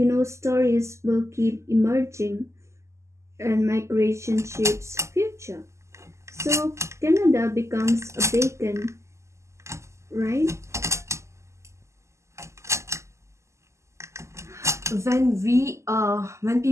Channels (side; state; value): left; late; 0.13 ms